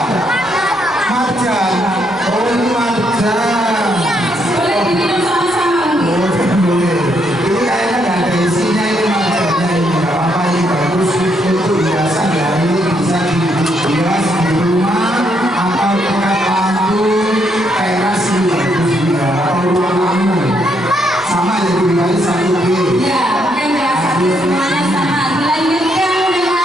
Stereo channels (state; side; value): normal; both; correlation 0.75